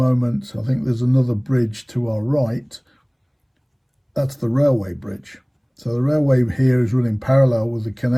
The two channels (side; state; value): both; identical; correlation 1.00